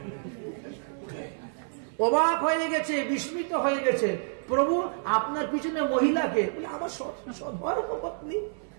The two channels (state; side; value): silent; left; 59 dB below the other